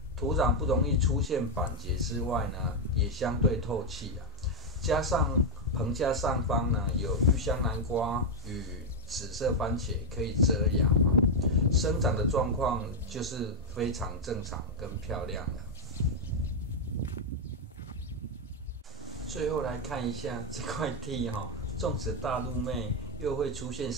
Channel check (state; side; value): normal; both; correlation 0.02